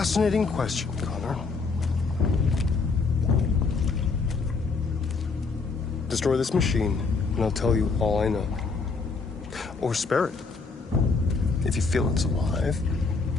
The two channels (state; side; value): quieter; right; 4.4 dB